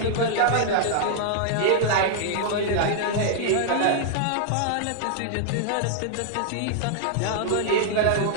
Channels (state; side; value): different; both; correlation -0.01